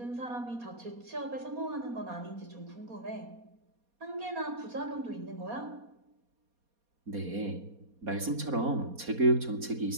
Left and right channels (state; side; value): late; left; 4.2 ms